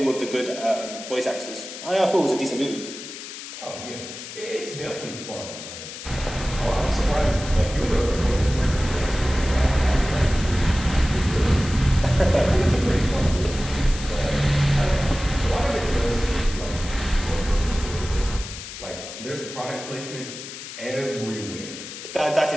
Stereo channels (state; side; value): noise; left; hiss, 11 dB below the sound